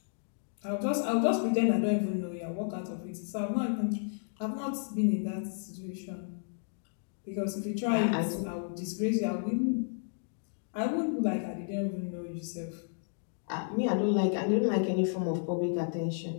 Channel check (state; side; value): silent; right; digital silence